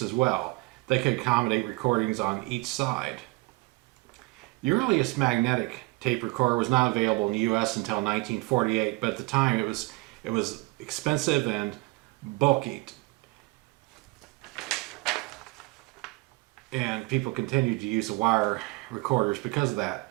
as well. They could accommodate recordings on each side. The earliest magnetic tape recorder was not available in the U.S. until 1948, but at the time it was expensive and bulky. And people continued to use the wire recorders because of that.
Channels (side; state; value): left; quieter; 24.2 dB